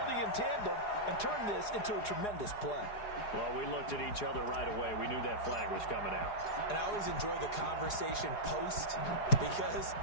in tandem and turned this into a tremendous play. Well, we looked at each other right away. We knew that flag was coming out. And I always enjoy the conversation post because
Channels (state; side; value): late; right; 4.8 ms